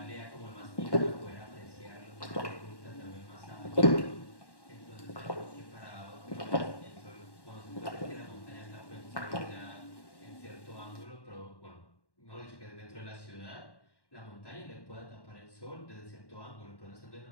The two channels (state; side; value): late; right; 1.1 ms